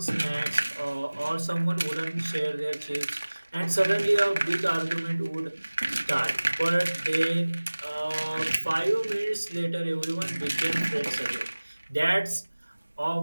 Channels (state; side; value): inverted; both; correlation -1.00